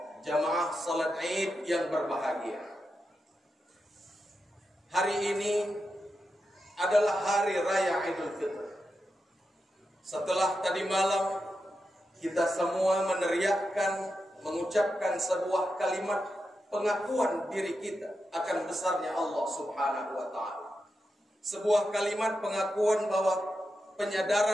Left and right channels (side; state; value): both; normal; correlation 0.88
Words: jamaah salat Id yang berbahagia. Hari ini adalah hari raya Idul Fitri. Setelah tadi malam kita semua meneriakkan, mengucapkan sebuah kalimat pengakuan diri kita akan besarnya Allah Subhanahu wa taala. Sebuah kalimat pengakuan bahwa